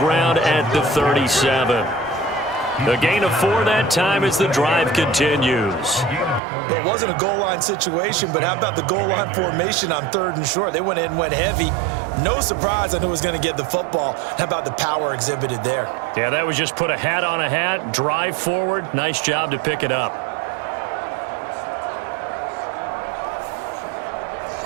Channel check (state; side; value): drops out; left; at 6.4 s